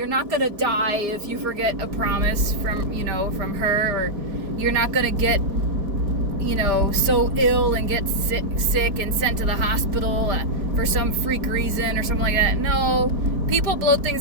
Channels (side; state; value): left; late; 4.7 ms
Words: not gonna die if you forget a promise from her, or you're not gonna get so ill and get sick and sent to the hospital for some freak reason or something like that. No, people blow things